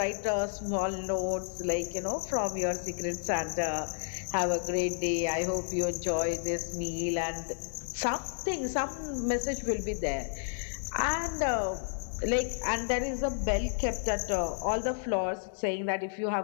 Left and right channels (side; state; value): right; silent; digital silence